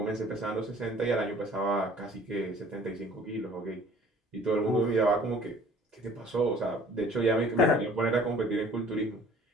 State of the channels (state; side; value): normal; both; correlation 0.52